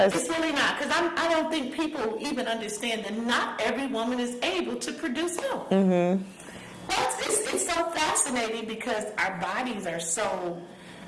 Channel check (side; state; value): both; identical; correlation 1.00